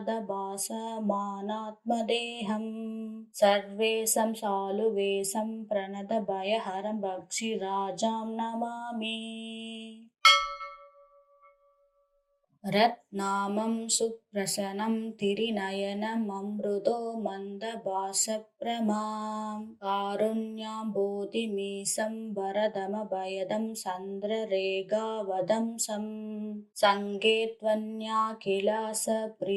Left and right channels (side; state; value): both; identical; correlation 1.00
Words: सर्वेशं शालुवेशं प्रणतभयहरं भक्षिराजां नमामि। रत्नामं सुप्रसनं तिरिनयनममृदो मन्दभासप्रमां कारुण्याम्बोधिमीशं वरदमभयदं सन्द्ररेगावदंसं सङ्गे